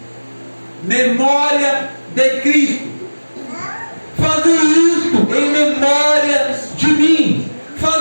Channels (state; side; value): inverted; both; correlation -1.00